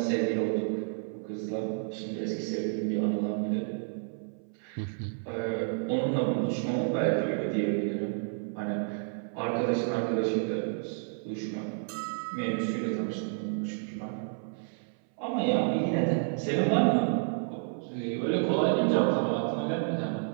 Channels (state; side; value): silent; left; 58 dB below the other